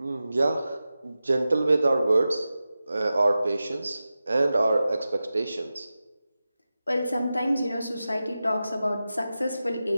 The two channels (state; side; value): inverted; both; correlation -0.93